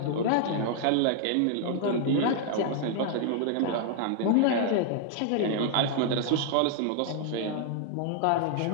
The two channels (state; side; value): different; both; correlation 0.00